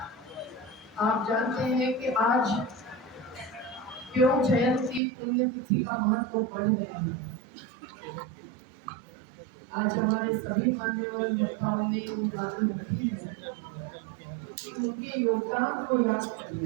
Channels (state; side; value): drops out; left; at 5.0 s